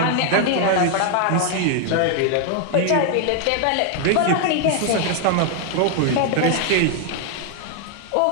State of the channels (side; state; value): both; different; correlation 0.00